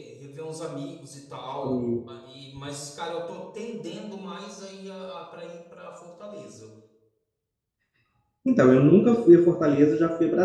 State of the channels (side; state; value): both; identical; correlation 1.00